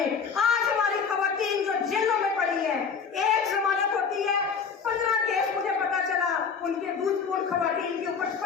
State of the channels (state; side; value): quieter; right; 6.0 dB